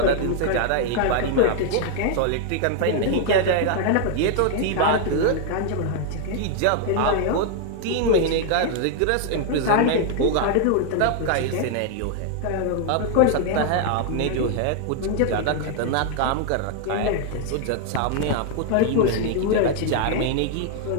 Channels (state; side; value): different; both; correlation 0.00